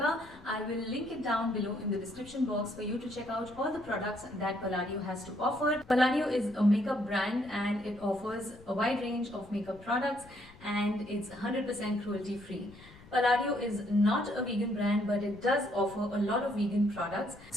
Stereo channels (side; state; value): left; noise; rumble, 22 dB below the sound